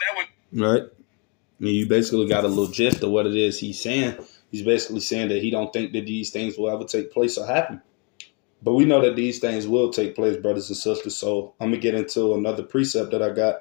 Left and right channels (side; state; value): right; quieter; 34.0 dB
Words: would. Right. You basically got a little gist of what it is he's saying. He's basically saying that he don't think that these things will ever take place or happen. But we know that these things will take place, brothers and sisters. So I'm going to get into another precept that I got.